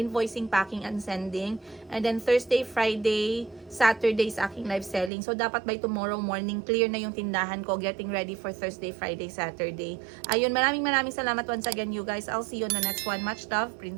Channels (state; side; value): drops out; left; at 5.1 s